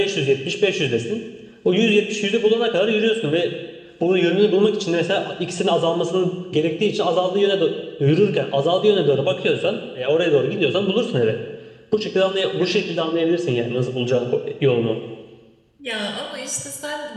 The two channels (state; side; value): identical; both; correlation 1.00